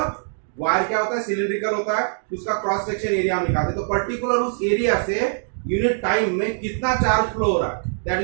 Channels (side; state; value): left; silent; digital silence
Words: वायर क्या होता है, सिलिंड्रिकल होता है, उसका क्रॉस सेक्शन एरिया हम निकालते हैं। तो पर्टिकुलर उस एरिया से यूनिट टाइम में कितना चार्ज फ्लो हो रहा है